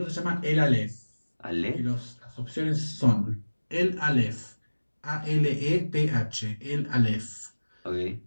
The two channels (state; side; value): inverted; both; correlation -1.00